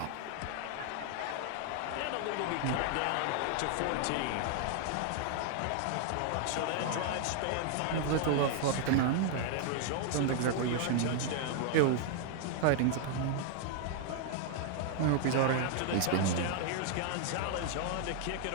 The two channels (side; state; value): both; different; correlation 0.00